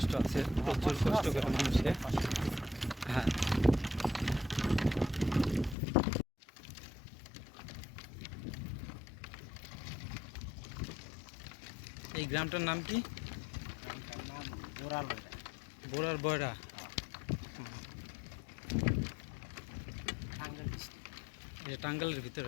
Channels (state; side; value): drops out; right; at 5.8 s